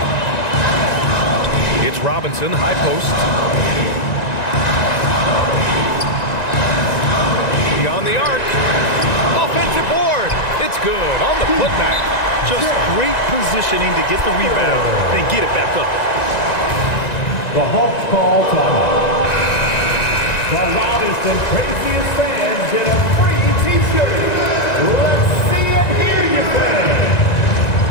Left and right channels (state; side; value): late; right; 1.9 ms